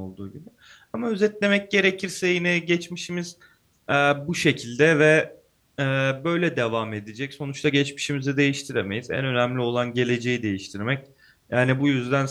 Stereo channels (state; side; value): identical; both; correlation 1.00